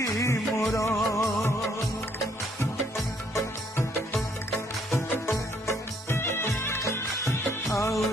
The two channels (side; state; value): both; normal; correlation 0.67